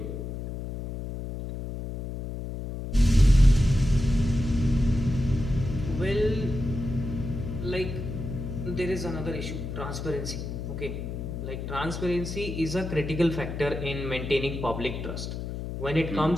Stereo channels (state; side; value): noise; left; hum, 6 dB below the sound